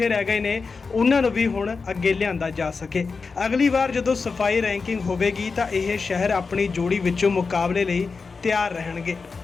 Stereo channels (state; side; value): quieter; right; 4.6 dB